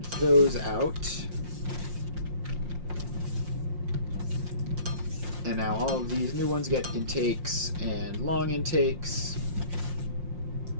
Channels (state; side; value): late; left; 5.6 ms